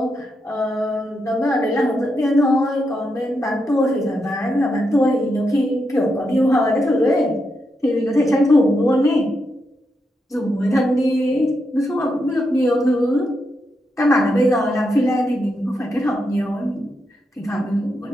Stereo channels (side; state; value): both; normal; correlation 0.84